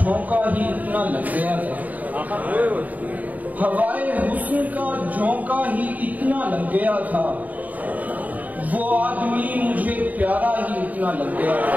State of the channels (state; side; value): late; left; 0.076 ms